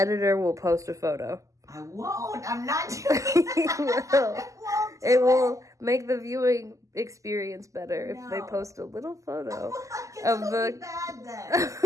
will post a photo. I won't. I'm not doing that. It will make the viewing experience better if they post a little photo of the bad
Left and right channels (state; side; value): late; left; 0.16 ms